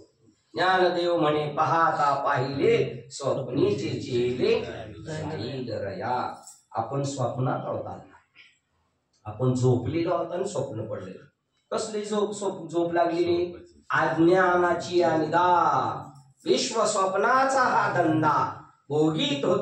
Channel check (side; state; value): both; identical; correlation 1.00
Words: ज्ञानदेव म्हणे पाहता पाहिले स्वप्नीचे चेले. आपण स्वप्नात आहोत. आपण झोपलेलो आहोत आणि स्वप्न पडले. कसली झोप लागलेली? अज्ञानाची अनिदा. विश्व स्वप्नाचा हा धंदा भोगीत